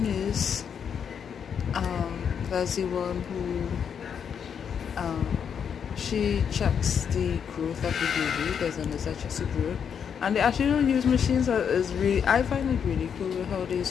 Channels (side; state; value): right; quieter; 7.5 dB